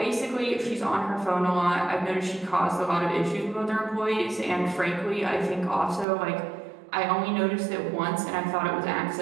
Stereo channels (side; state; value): left; drops out; at 6.1 s